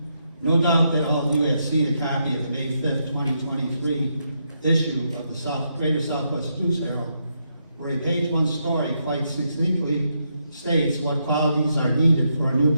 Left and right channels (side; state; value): both; inverted; correlation -0.80